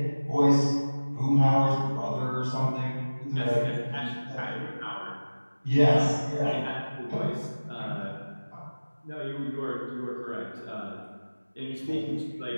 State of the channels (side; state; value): both; inverted; correlation -1.00